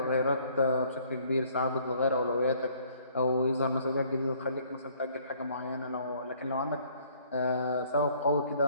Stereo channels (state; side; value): inverted; both; correlation -0.60